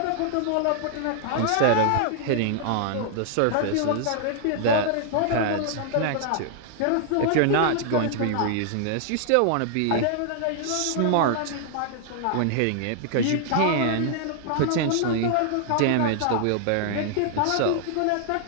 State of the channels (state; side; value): different; both; correlation 0.00